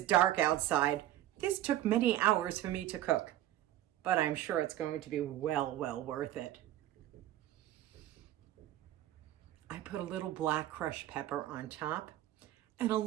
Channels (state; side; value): quieter; left; 13.8 dB